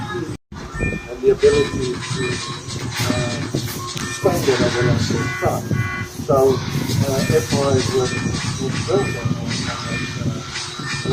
And the ability to expand it over a certain time. So, FRAs were built on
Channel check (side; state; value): both; identical; correlation 1.00